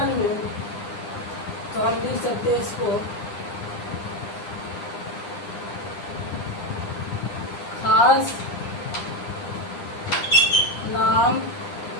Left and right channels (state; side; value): late; right; 9.9 ms